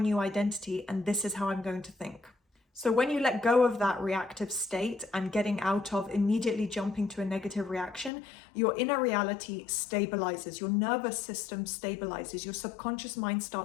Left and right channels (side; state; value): right; drops out; at 8.1 s